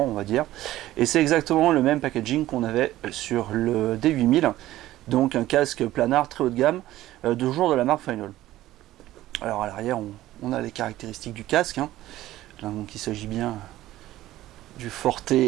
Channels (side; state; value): left; quieter; 15.1 dB